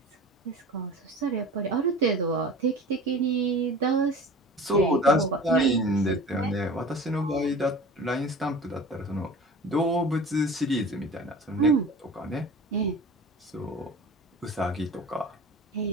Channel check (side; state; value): both; normal; correlation 0.39